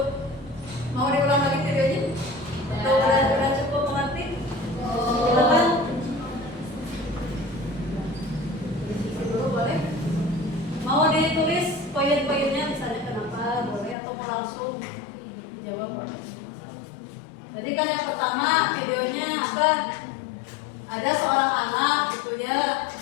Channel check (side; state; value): right; drops out; at 14.0 s